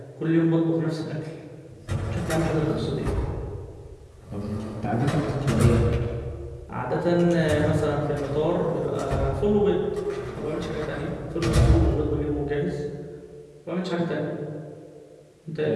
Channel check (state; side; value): identical; both; correlation 1.00